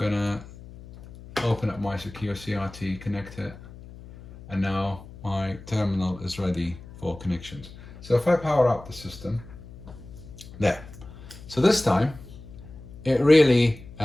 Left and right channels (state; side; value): noise; left; hum, 17 dB below the sound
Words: open up my secure CRT, connect it, and now my terminal is ready for connections. So if I power up the system, there. So this time, it really